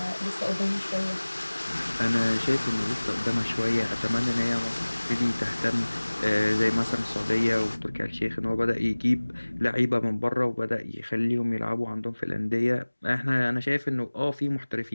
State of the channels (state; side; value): inverted; both; correlation -1.00